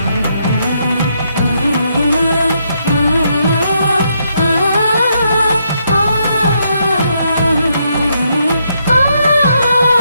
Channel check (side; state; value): both; inverted; correlation -0.77